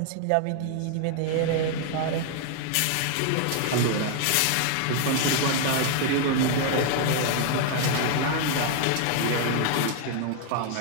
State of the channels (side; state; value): both; different; correlation 0.00